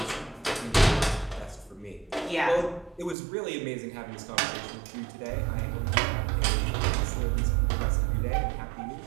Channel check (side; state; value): left; drops out; at 3.2 s